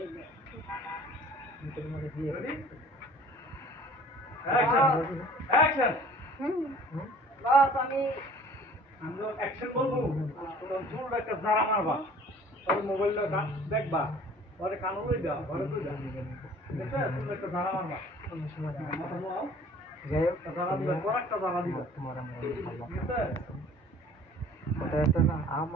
অ্যাকশন বাস আমি অ্যাকশন বলবো, তোর জোর একটা জারা মারবা, তোর মোবাইলটা দেখবা, পরে কানো লই দাও, ঘরে লই দাও, ঠিক আছে? তুমি একটা জারা মারবা, মাথা নোয়াও, যাই হোক জারা দিবা, বড় একটা জারা দিবা, তোমার আমার ঠিক আছে? কথা আছে না,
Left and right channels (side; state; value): both; normal; correlation 0.50